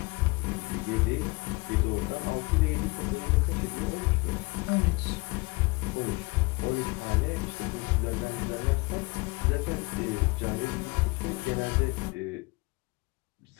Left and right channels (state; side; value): quieter; right; 25.5 dB